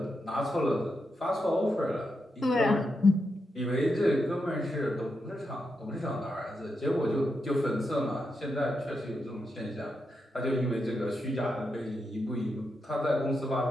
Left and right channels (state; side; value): normal; both; correlation 0.85